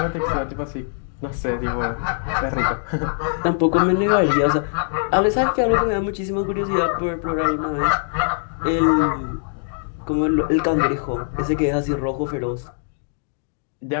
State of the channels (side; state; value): right; silent; digital silence